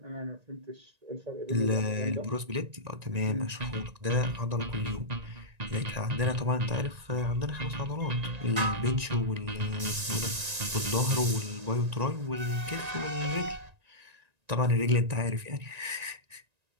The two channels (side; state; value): left; late; 1.9 ms